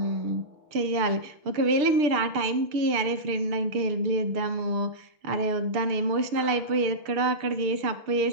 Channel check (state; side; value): late; left; 6.7 ms